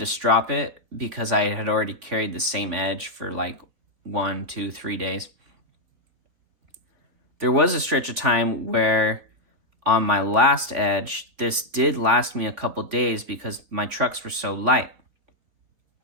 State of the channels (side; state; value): left; late; 3.5 ms